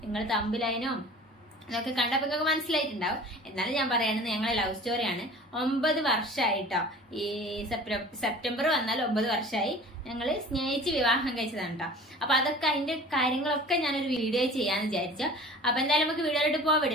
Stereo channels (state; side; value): normal; both; correlation 0.43